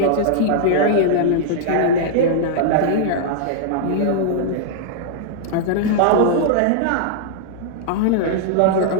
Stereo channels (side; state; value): both; different; correlation -0.01